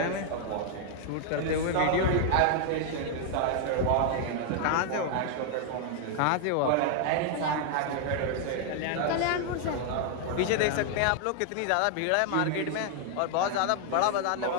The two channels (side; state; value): both; different; correlation 0.00